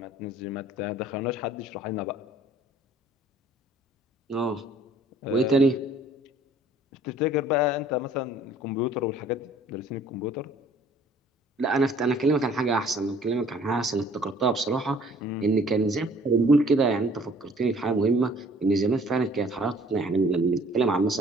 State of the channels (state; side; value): normal; both; correlation 0.55